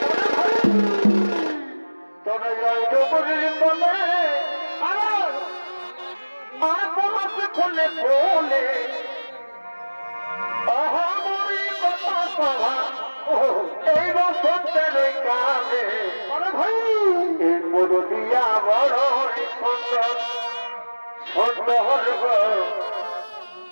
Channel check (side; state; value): both; inverted; correlation -1.00